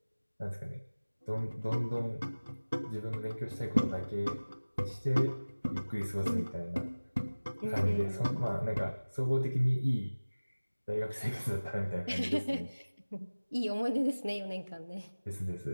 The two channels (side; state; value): both; inverted; correlation -1.00